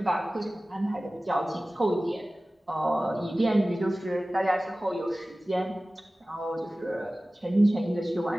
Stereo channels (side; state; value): both; normal; correlation 0.97